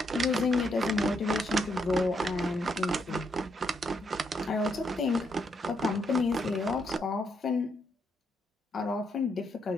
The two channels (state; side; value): normal; both; correlation 0.77